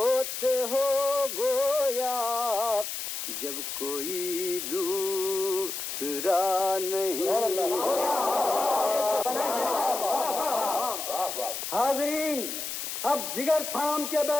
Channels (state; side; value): noise; left; hiss, 5 dB below the sound